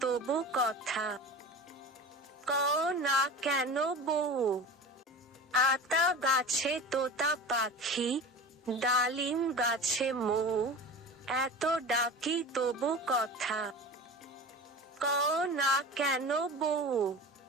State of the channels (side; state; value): both; normal; correlation 0.34